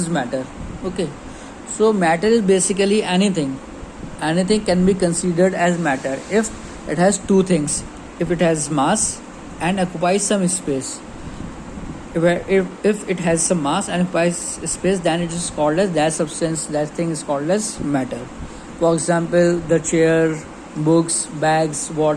matter? Okay. So matter is basically anything. Anything can be considered as matter if it has two things. If it has mass and occupies some space. If it has some mass and occupies space, then it is called as that substance, that thing is called as matter. For example, the chair, books, bags,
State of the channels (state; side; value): identical; both; correlation 1.00